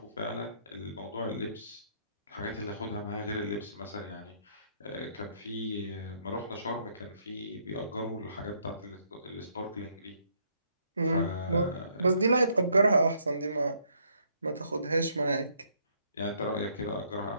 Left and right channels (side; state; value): both; inverted; correlation -0.69